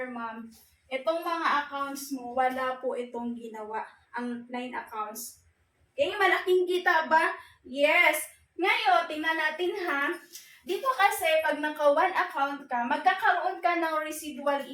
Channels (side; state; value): both; identical; correlation 1.00